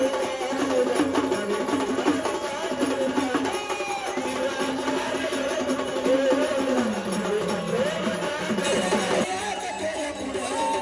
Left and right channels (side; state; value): right; noise; hum, 30 dB below the sound